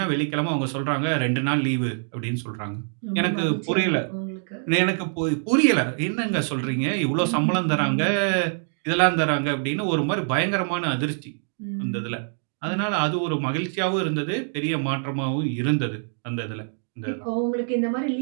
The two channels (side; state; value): left; silent; 61 dB below the other